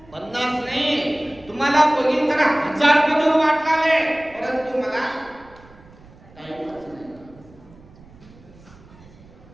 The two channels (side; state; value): right; noise; rumble, 24 dB below the sound